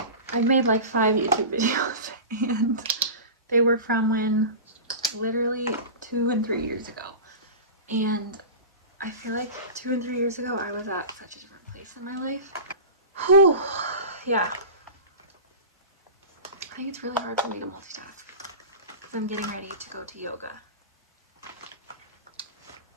I've made like 5 YouTube videos and they were from when, literally 2 and 3 years ago. And I feel like 2 and 3 years ago I was at such a different place in my life. Whew, yeah. I think it's really hard for me to multitask because I'm getting ready to go to yoga.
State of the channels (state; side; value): inverted; both; correlation -0.31